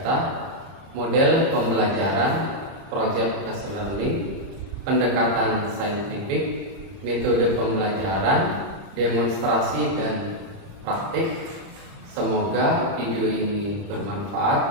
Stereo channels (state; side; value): late; left; 30 ms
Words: model pembelajaran, project based learning, pendekatan saintifik, metode pembelajaran, demonstrasi dan praktik. Semoga video ini